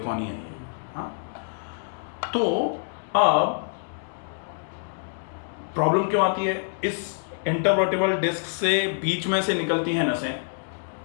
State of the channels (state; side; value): silent; right; digital silence